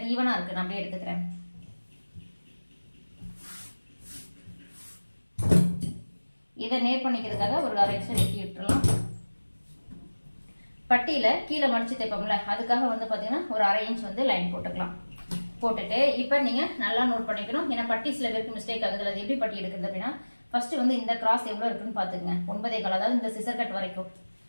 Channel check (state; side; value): inverted; both; correlation -1.00